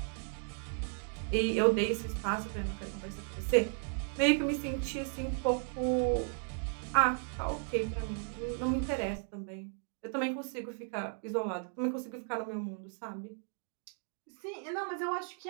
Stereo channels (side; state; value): left; silent; 54 dB below the other